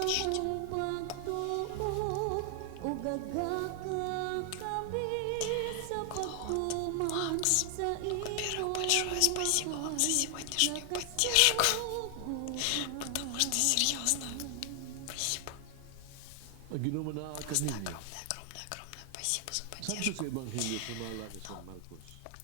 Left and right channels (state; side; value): different; both; correlation 0.00